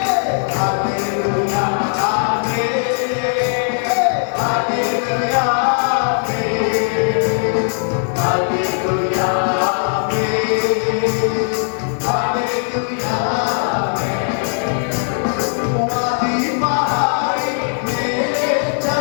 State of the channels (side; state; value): right; silent; digital silence